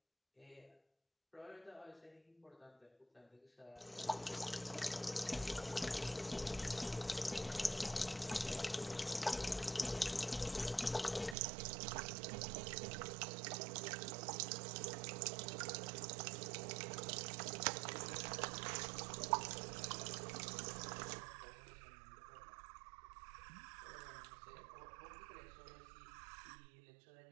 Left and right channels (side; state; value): left; drops out; at 11.4 s